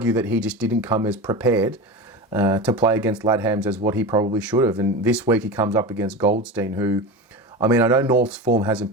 that he just didn't come as prepared to play against Ladhams as what he probably should have. And this week he comes up against Goldstein, who, I mean, I know North's form hasn't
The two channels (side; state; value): both; normal; correlation 0.26